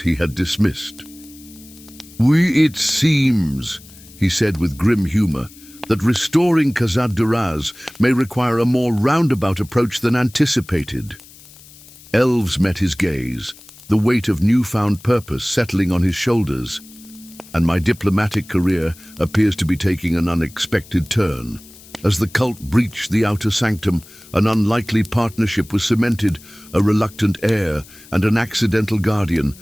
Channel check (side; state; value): left; noise; hiss, 22 dB below the sound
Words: had dismissed. It seems, he said with grim humor, that restoring Khazad-Duraz may require a more roundabout approach than anticipated. Elves met his gaze, the weight of newfound purpose settling on his shoulders. And my diplomatic career appears to be taking an unexpected turn. As the cult breached the outer sanctum, an unlikely partnership was cemented, a reluctant heir and an accidental guardian,